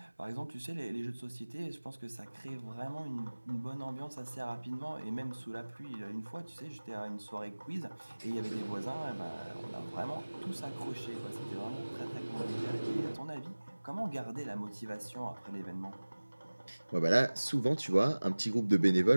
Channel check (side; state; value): both; inverted; correlation -1.00